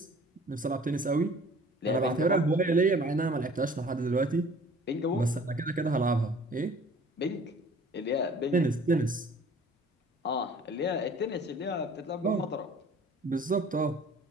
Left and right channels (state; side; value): normal; both; correlation 0.50